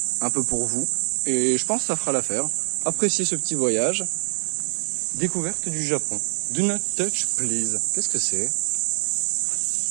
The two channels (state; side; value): silent; left; digital silence